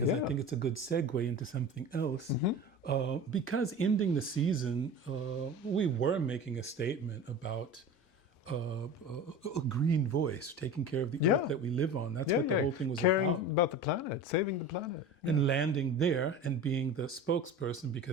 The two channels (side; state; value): both; normal; correlation 0.33